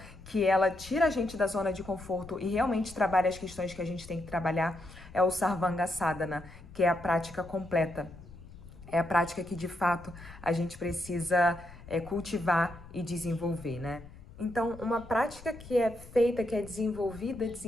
que ela tira a gente da zona de conforto e realmente trabalha as questões que a gente tem que trabalhar é o Sarvanga Sadhana, que é a prática completa. É a prática que de fato a gente precisa cultivar e desenvolver, né? Então, uma prática que é feita, que é desenvolvida,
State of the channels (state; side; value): noise; left; rumble, 18 dB below the sound